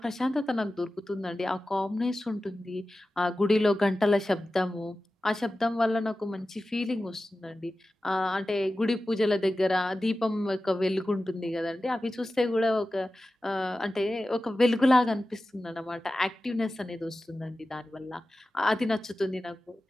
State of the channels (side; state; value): both; normal; correlation 0.95